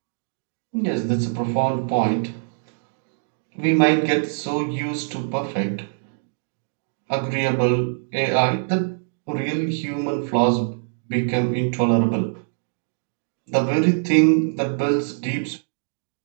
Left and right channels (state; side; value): silent; left; digital silence